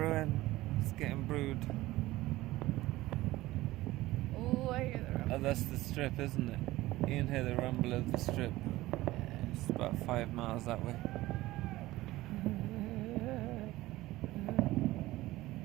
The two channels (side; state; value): left; quieter; 17.6 dB